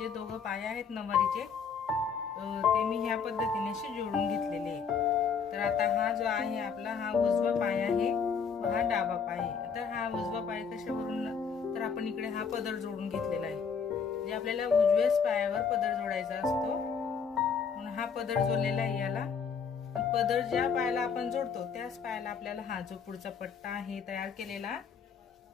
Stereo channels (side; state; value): right; quieter; 6.2 dB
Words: दोघं पाय आहेत नवारीचे ते मी ह्या पद्धतीने असे जोडून घेतलेले आहे. तर आता हा जो आहे आपला हा उजवा पाय आहे व हा डावा पाय आहे. तर हा उजवा पाय कशावरून, तर आपण इकडे हा पदर जोडून घेतलेला आहे. जे आपल्याला उजव्याच पायावर पदर जोडायचा असतो म्हणून हा पदर जोडलेला आहे याला. पदर ज्या पायाला आपण जोडतो त्याच पायाला आपल्याला हा जो पुढचा पट्टा आहे तयार केलेला